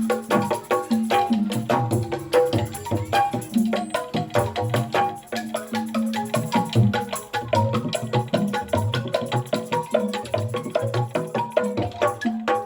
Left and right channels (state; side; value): identical; both; correlation 1.00